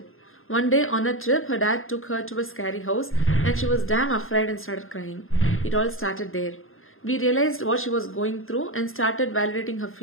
One day on a trip, her dad took her to a scary house and she was damn afraid and started crying. It all started there. We realized what she was going through and started validating her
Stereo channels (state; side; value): late; right; 0.60 ms